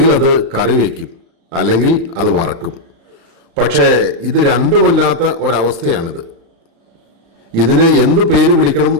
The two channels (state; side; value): late; left; 36 ms